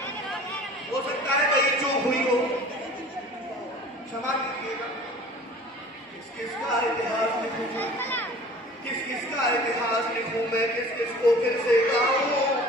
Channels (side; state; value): both; normal; correlation 0.45